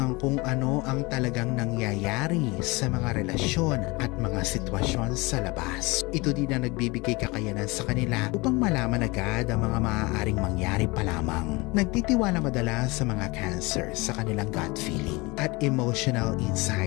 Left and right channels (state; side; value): quieter; right; 24.6 dB